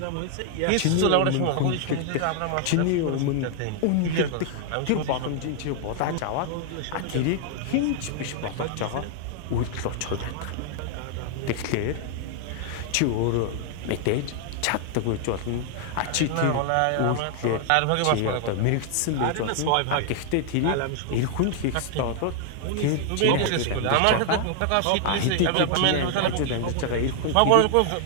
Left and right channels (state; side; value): different; both; correlation 0.00